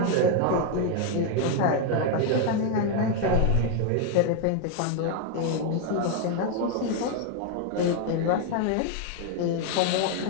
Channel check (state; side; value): different; both; correlation 0.01